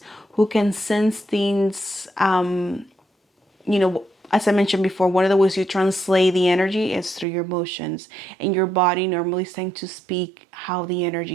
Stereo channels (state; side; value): drops out; left; at 7.2 s